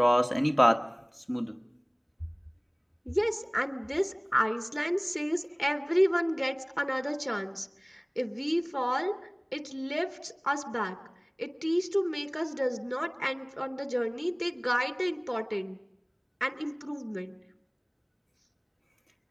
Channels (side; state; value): both; identical; correlation 1.00